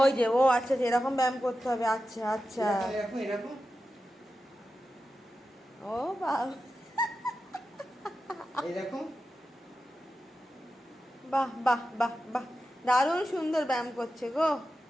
যে ও আচ্ছা, এরকম ব্যায়াম করতে হবে। আচ্ছা আচ্ছা, এরকম এরকম। ও বাবা, এরকম। বাহ বাহ বাহ বাহ, দারুণ সুন্দর ব্যায়াম করছে গো।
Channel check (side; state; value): both; normal; correlation 0.91